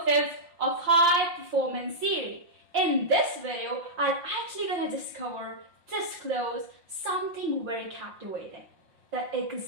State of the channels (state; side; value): late; left; 5.6 ms